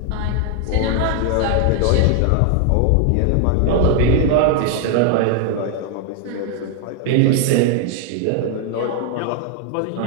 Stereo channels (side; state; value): both; different; correlation 0.00